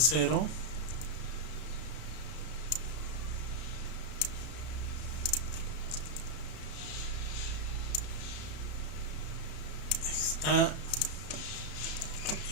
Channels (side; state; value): right; late; 33 ms